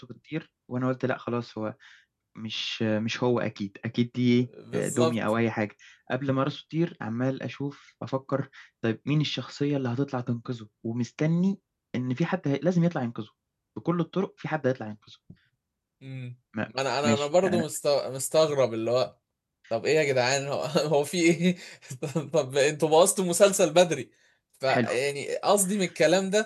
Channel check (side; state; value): both; identical; correlation 1.00